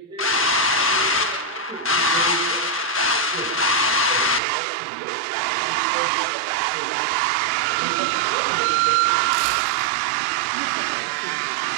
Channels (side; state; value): left; drops out; at 4.4 s